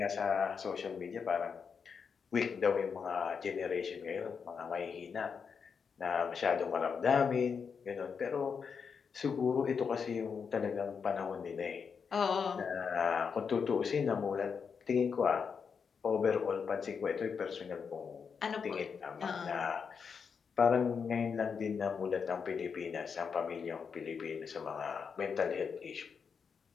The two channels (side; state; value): right; quieter; 6.1 dB